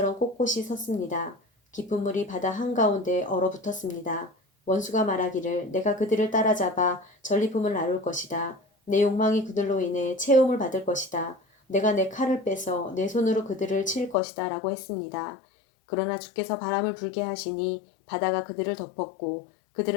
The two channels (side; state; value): right; drops out; at 14.2 s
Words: 꼿꼿이 섰습니다. 깊은 물이 바다 한가운데 얼어붙었습니다. 원수가 말하기를 내가 그들을 따라잡아 전리품을 나눌 것이다. 내 욕망이 그들로 인해 채움을 받을 것이다. 내가 내 칼을 빼서 내 손으로 그들을 칠 것이다 라고 했습니다. 그러나 주께서 바람을 불게 하시니 바다가 그들을 덮었고